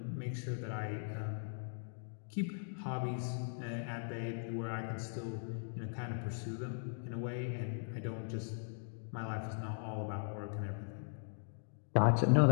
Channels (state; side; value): silent; right; digital silence